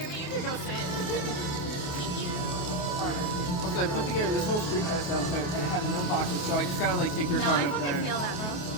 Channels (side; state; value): right; late; 28 ms